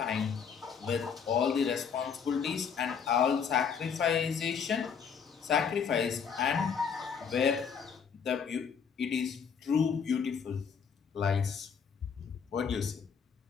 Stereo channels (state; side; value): quieter; right; 6.7 dB